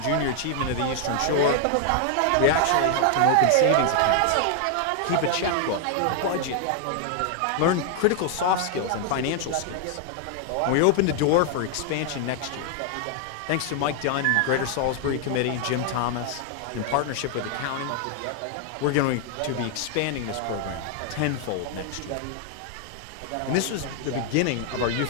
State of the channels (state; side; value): different; both; correlation 0.00